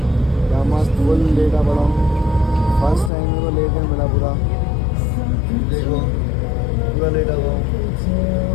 यहाँ मस्त फुल लेटा पड़ा हूँ। फर्स्ट टाइम मेरे को लेटने मिला पूरा, देखो पूरा लेटा हुआ हूँ।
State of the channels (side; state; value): right; drops out; at 3.1 s